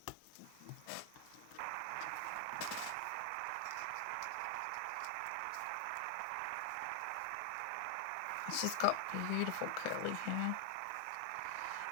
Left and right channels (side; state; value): both; different; correlation 0.00